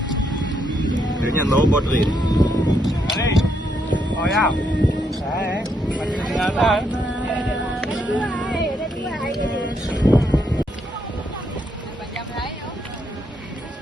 Kayaknya low body. Oh ya, masih kelihatan.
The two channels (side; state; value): both; normal; correlation 0.77